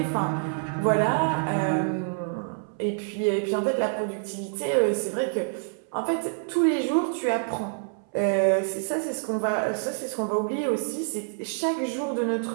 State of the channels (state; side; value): silent; left; 60 dB below the other